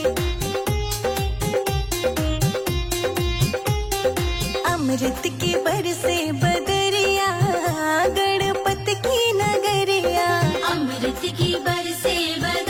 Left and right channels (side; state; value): both; identical; correlation 1.00